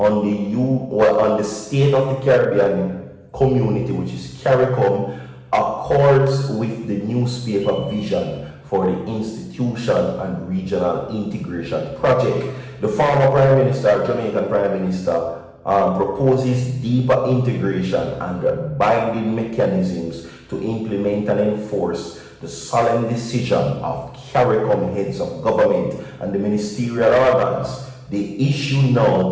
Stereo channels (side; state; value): both; identical; correlation 1.00